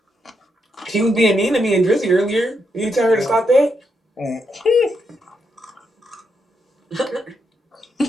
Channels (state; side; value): normal; both; correlation 0.80